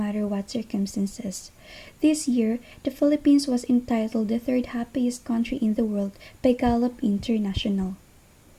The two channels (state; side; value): identical; both; correlation 1.00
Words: what circumstances. This year, the Philippines was entitled the third happiest country in the world by Gallup International.